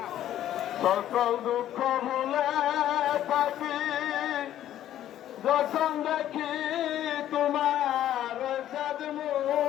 সকল দুঃখ ভুলে থাকি যখন দেখি তোমার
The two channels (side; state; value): right; quieter; 12.0 dB